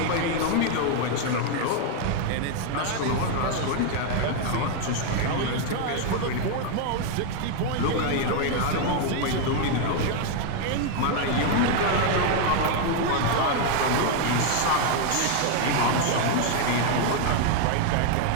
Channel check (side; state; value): both; different; correlation 0.00